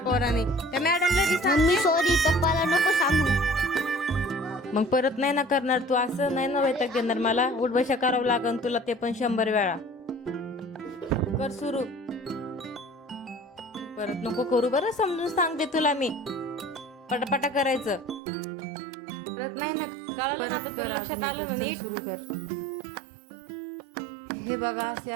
त्या मॅडमला बी सांग. सॉरी, पप्पाला नको सांगू. मग परत नाही ना करणार तू असं? नाही ना वैताग देणार मला? उठबशा करावं लागन तुला, ते पण 100 वेळा. कर सुरू. परत नको करू बरं, समजून सांगते तुला मी. पटापटा करायचं. परत नाही ना कळालं. सुरू कर. हे बघा, असे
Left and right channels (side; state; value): left; drops out; at 18.2 s